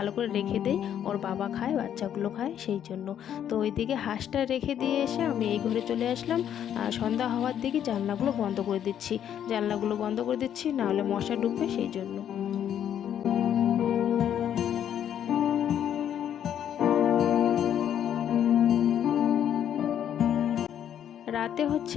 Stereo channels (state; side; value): quieter; right; 9.8 dB